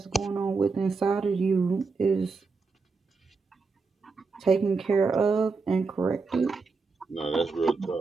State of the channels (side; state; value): left; quieter; 4.4 dB